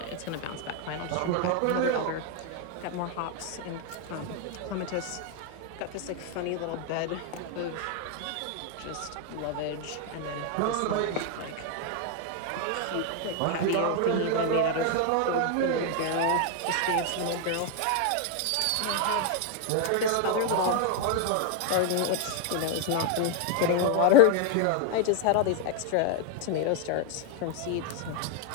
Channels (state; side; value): different; both; correlation 0.01